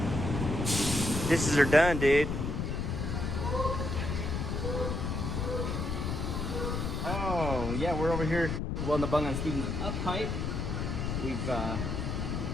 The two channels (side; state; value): left; noise; rumble, 2 dB below the sound